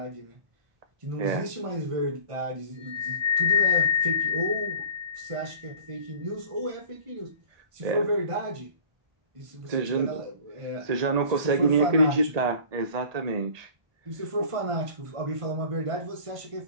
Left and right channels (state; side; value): late; left; 1.8 ms